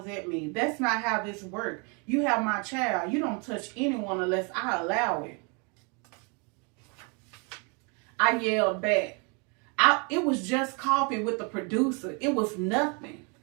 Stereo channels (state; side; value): quieter; left; 33.6 dB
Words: at me. That's not how this works. You have my child. You don't touch anyone unless I allow it. I yelled back. It was just coffee with the producer. It was nothing.